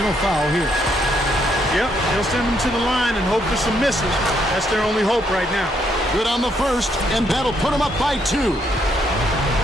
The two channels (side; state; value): both; normal; correlation 0.73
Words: foul here. Yep, they'll send them to the line and hope for some misses. That's their only hope right now. Good on the first, and that'll put them up by 2.